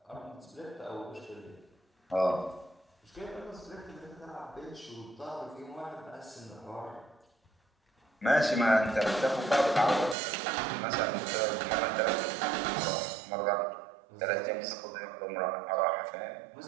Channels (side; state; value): left; drops out; at 10.2 s